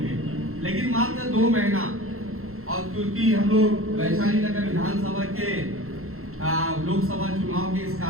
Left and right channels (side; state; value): left; late; 0.62 ms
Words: लेकिन मात्र 2 महीना। और क्योंकि हम लोग वैशाली नगर विधानसभा के लोकसभा चुनाव के इस